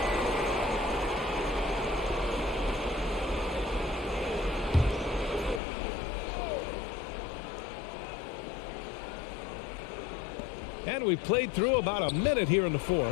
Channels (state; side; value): drops out; right; at 5.6 s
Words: And we played through about a minute here in the